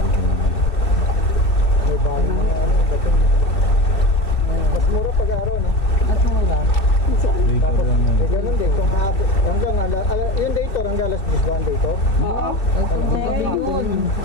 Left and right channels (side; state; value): right; late; 2.7 ms